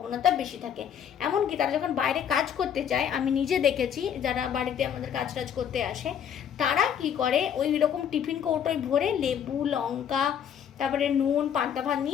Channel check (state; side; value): quieter; right; 8.7 dB